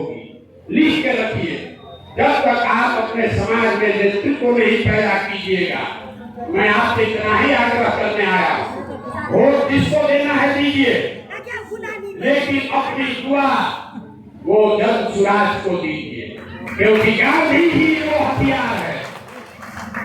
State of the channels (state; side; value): identical; both; correlation 1.00